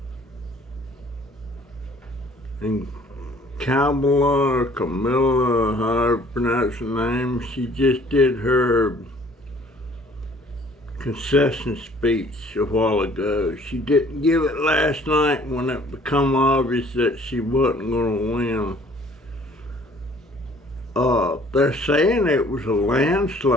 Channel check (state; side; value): normal; both; correlation 0.56